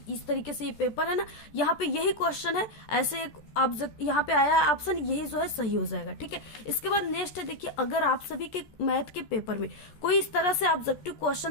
इस तरीके से ये पेपर है ना, यहाँ पे यही क्वेश्चन है, ऐसे एक ऑब्जेक्ट यहाँ पे आया ऑप्शन, यही जो है सही हो जाएगा। ठीक है, इसके बाद नेक्स्ट है, देखिए अगर आप सभी के मैथ के पेपर में कोई इस तरह से ऑब्जेक्टिव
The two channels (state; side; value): late; right; 13 ms